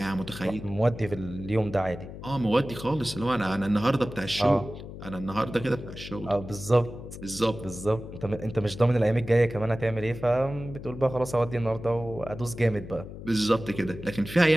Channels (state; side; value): noise; left; hum, 12 dB below the sound